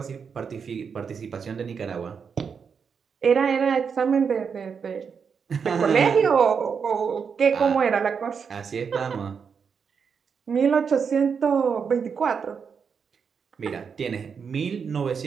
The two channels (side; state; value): left; quieter; 6.3 dB